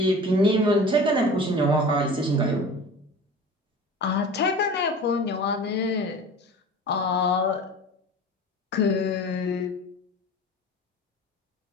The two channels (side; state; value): both; normal; correlation 0.38